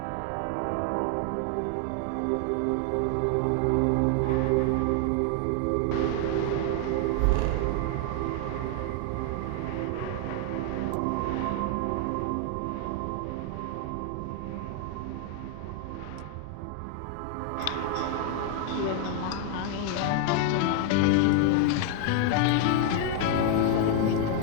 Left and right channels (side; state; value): both; different; correlation 0.00